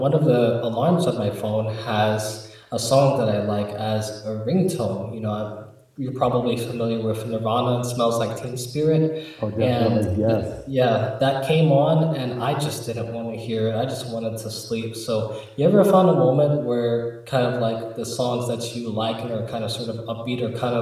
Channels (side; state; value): both; identical; correlation 1.00